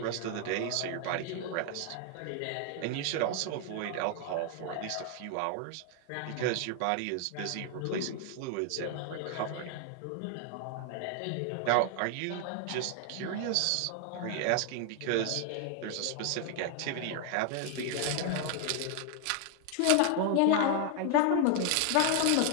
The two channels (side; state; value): both; different; correlation 0.00